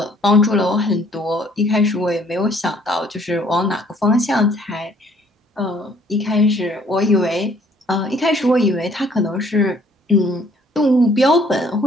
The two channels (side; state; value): both; normal; correlation 0.61